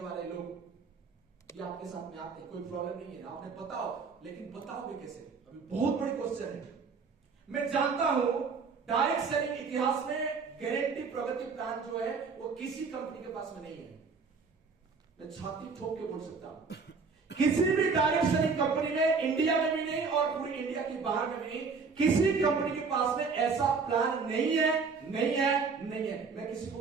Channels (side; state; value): left; quieter; 5.0 dB